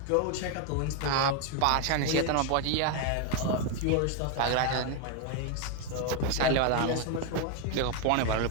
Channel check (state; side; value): different; both; correlation 0.01